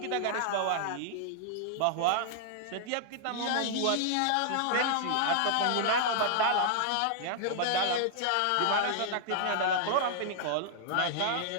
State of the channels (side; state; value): both; different; correlation -0.01